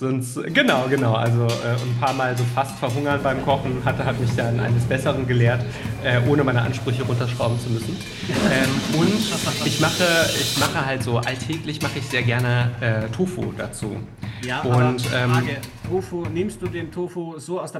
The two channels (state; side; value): identical; both; correlation 1.00